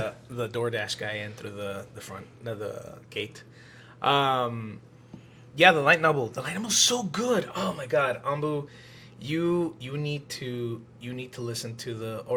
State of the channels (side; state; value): both; identical; correlation 1.00